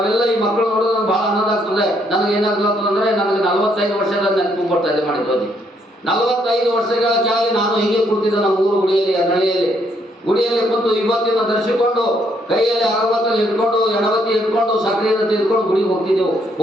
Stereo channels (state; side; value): normal; both; correlation 0.71